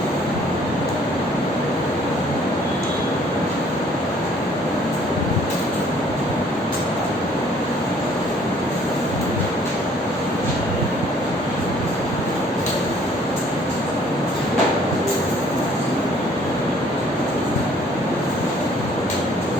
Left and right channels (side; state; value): both; normal; correlation 0.59